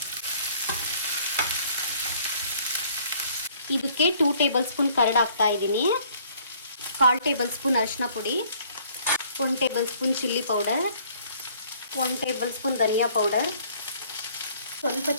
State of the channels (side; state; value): both; inverted; correlation -0.58